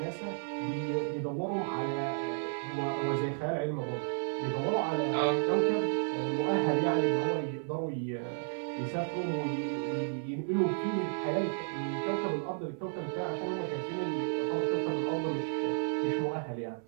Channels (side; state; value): left; silent; 56 dB below the other